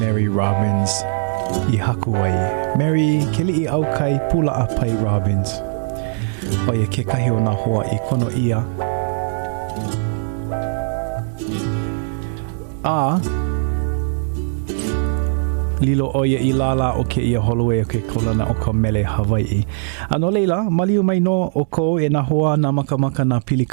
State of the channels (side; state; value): left; silent; 66 dB below the other